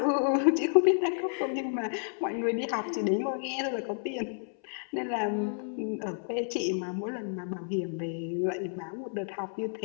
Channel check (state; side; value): silent; right; 57 dB below the other